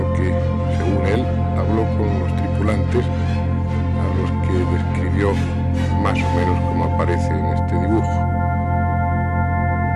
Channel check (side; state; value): both; identical; correlation 1.00